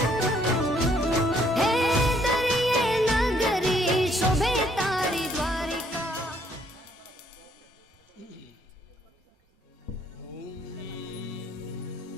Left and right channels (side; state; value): both; normal; correlation 0.67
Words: हे दरिये नगरी शोभे तारी द्वारिका।